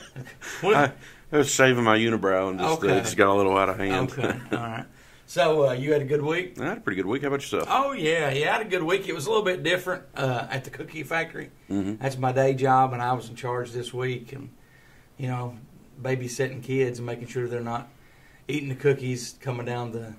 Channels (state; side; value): identical; both; correlation 1.00